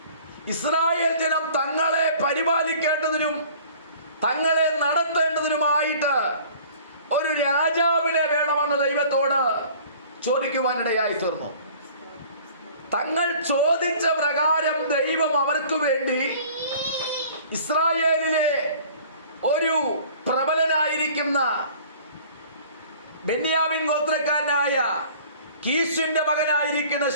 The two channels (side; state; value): both; inverted; correlation -0.48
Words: ഇസ്രായേൽ ജനം തങ്ങളെ പരിപാലിക്കേണ്ടതിനും തങ്ങളെ നടത്തേണ്ടതിനുമായിട്ട് ഒരു രാജാവിനെ വേണമെന്ന് ദൈവത്തോട് ചോദിക്കുവാനിടയായി തീർന്നു. തങ്ങൾ ചോദിച്ച പ്രകാരം ദൈവം അവർക്ക് വേണ്ടി ഇസ്രായേലിലെ ഒരു പ്രബലനായിരിക്കുന്ന ബെന്യാമിൻ ഗോത്രക്കാരനായ കീശിന്റെ മകനായിരിക്കുന്ന